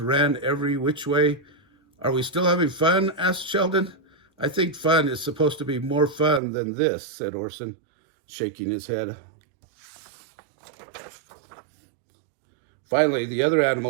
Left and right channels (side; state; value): left; drops out; at 6.4 s